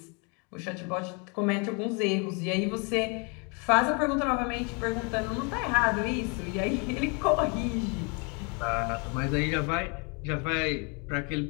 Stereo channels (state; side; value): quieter; right; 33.5 dB